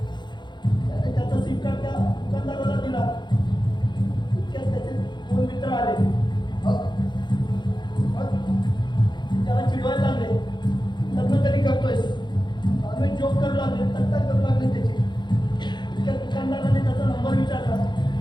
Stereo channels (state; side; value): late; right; 0.22 ms